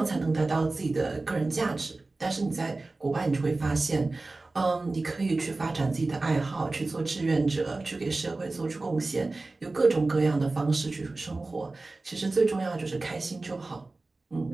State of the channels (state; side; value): quieter; left; 3.3 dB